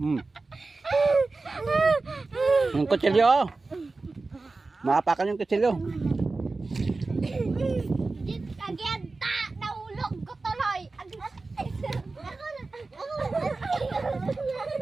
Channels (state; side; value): quieter; left; 3.6 dB